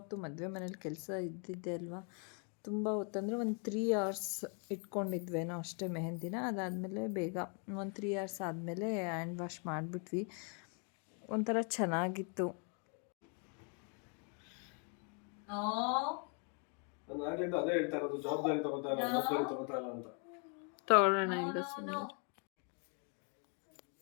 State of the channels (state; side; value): quieter; right; 39.2 dB